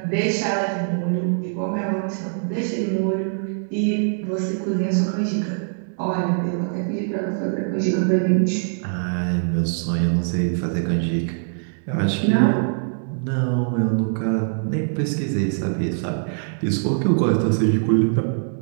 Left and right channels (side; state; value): left; silent; digital silence